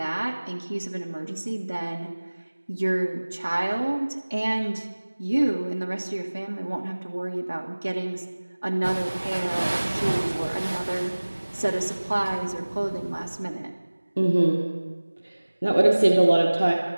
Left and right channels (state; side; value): inverted; both; correlation -1.00